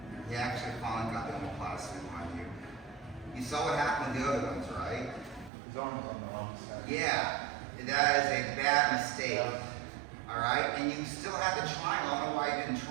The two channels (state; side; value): drops out; left; at 5.5 s